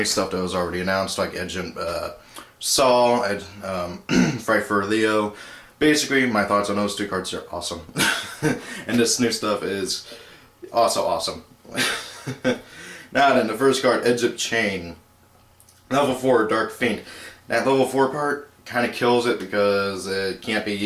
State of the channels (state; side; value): identical; both; correlation 1.00